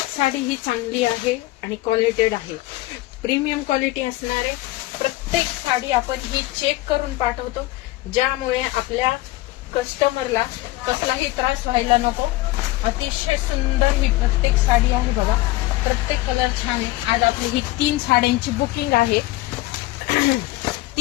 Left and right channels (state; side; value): quieter; right; 18.6 dB